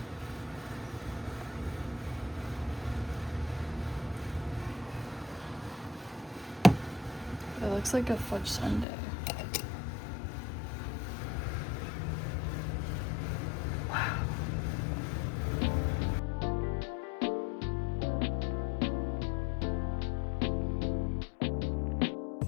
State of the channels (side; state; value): right; drops out; at 8.8 s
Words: It looks like a fudge sundae.